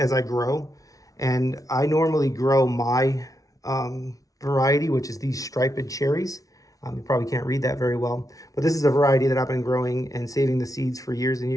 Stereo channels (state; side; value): late; right; 0.17 ms